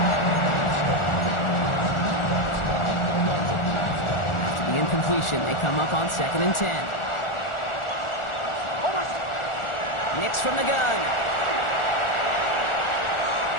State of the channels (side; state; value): right; late; 1.4 ms